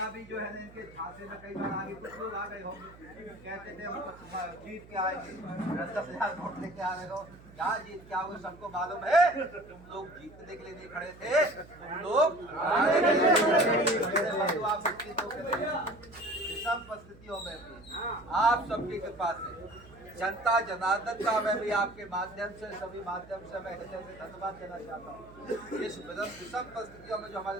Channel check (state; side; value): noise; right; hum, 21 dB below the sound